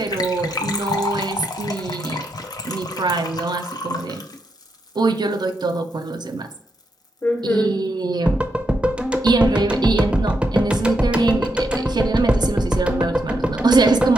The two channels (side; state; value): both; normal; correlation 0.81